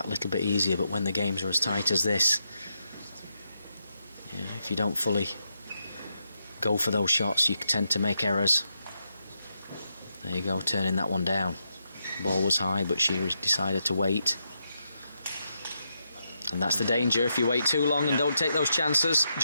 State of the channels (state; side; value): inverted; both; correlation -0.83